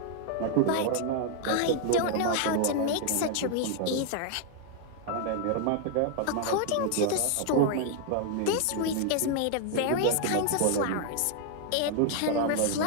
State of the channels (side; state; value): both; different; correlation 0.00